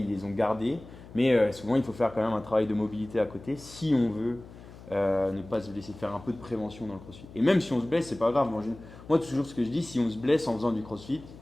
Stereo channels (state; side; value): noise; left; hum, 18 dB below the sound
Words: les ont gardés. Mais souvent, il faut faire quand même un travail de mobilité à côté si on veut ne pas se blesser, faire un peu de prévention dans le crossfit. Et même si on se blesse, c'est pas grave. Moi, toujours ce que je dis, si on se blesse en faisant du crossfit,